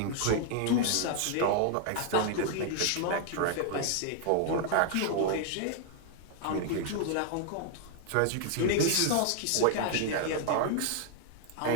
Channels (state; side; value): different; both; correlation 0.00